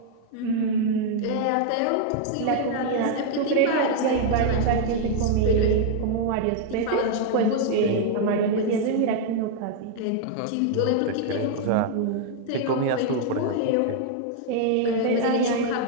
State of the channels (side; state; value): both; different; correlation 0.00